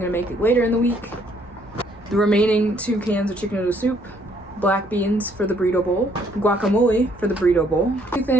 make later in the week. The remaining 2 cans of chicken noodle soup. Black beans for the burrito bowl. Guacamole for the burrito bowl. 2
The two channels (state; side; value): normal; both; correlation 0.66